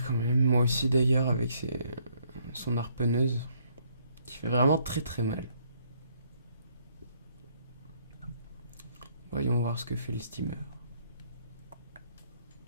quand même. Moi aussi d'ailleurs avec son harponneuse. Qui fait vraiment très très mal. Voyons voir ce que fait le steamer.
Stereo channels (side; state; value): both; inverted; correlation -0.68